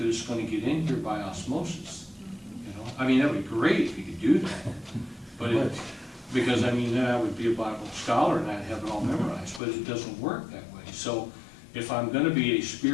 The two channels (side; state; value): right; drops out; at 9.6 s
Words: it's gonna get in here by osmosis, I mean, that'd be great if you could do that, but because then I would be a Bible scholar and I'd have it all memorized, but it doesn't work that way. So if I'm gonna be a